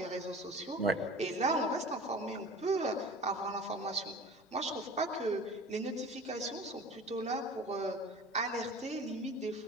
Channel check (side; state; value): both; normal; correlation 0.39